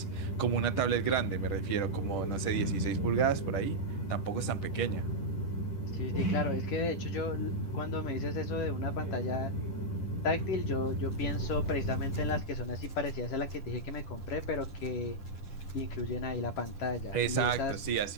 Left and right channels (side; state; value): right; late; 10 ms